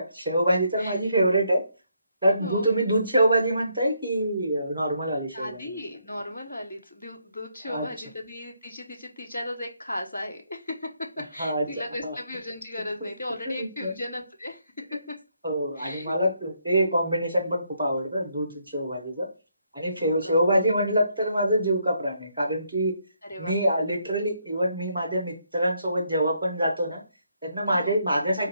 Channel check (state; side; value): inverted; both; correlation -0.74